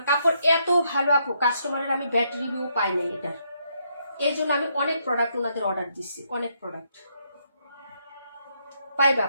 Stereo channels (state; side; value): inverted; both; correlation -0.75